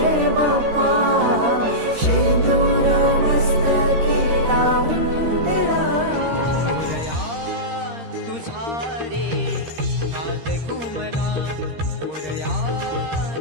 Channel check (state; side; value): late; left; 13 ms